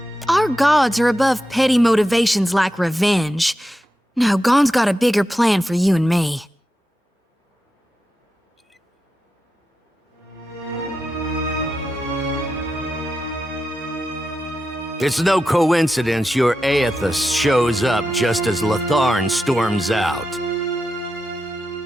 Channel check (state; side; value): normal; both; correlation 0.89